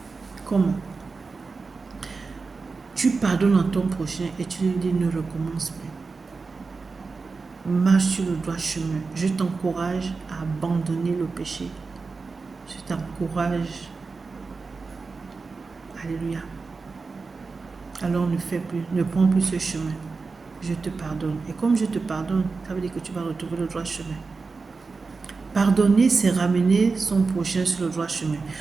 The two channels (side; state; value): left; quieter; 4.3 dB